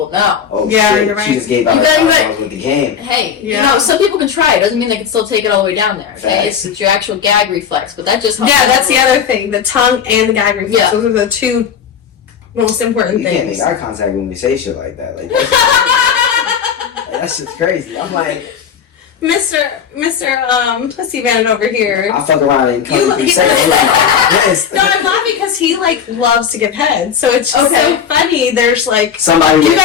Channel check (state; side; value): quieter; right; 7.6 dB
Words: know. Oh yeah, shit. you're right. She just gave out her time with the game. Hey, you know, some people can try it. Doesn't mean they can still take it all the way down there. Okay, it's your actual gag reflex, but that just helps. Yeah, that's the other thing. The tongue and the gag reflex. Yeah. Those are the two most important things. You can't make eye contact when we say shit like that. Like that's just crazy. I'm like, Mr. Pussy Man over here. I'll fuck around and come 3 seconds. No, I'm laughing because he like loves to give head, so it's just so funny. There's like somebody. You